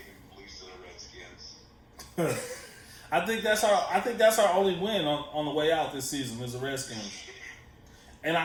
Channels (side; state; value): both; identical; correlation 1.00